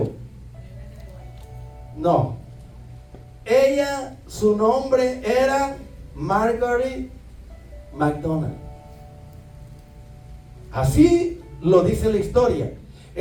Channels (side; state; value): both; identical; correlation 1.00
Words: No. Ella, su nombre era Margaret McDonald. Así lo dice la historia.